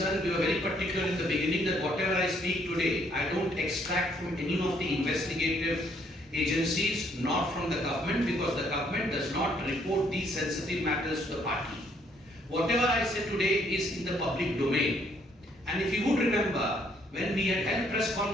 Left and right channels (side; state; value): both; normal; correlation 0.68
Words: we were very particular in the beginning that whatever I speak today, I don't extract from any of the investigative agencies, nor from the government, because the government does not report these sensitive matters to the party. Whatever I say today is in the public domain. And if you would remember, when we had held press